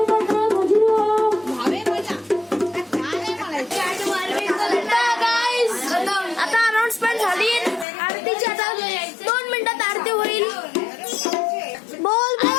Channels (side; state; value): right; drops out; at 7.9 s